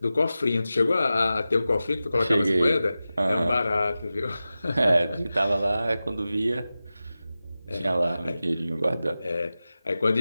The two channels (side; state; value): both; inverted; correlation -0.94